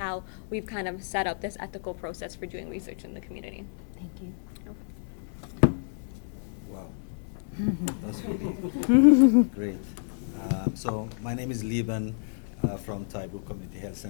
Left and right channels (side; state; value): right; silent; 58 dB below the other